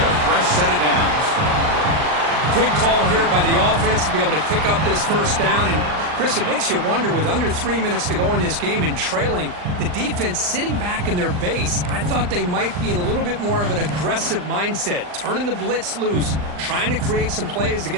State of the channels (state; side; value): late; left; 39 ms